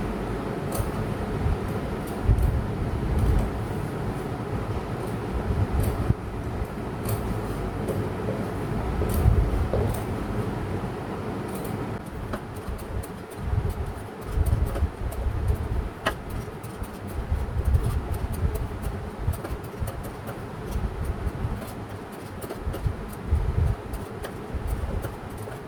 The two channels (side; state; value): both; identical; correlation 1.00